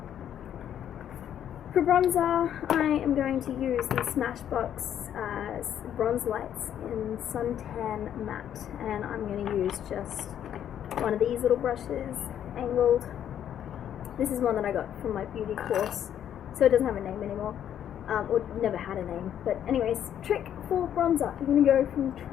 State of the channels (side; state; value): right; quieter; 10.0 dB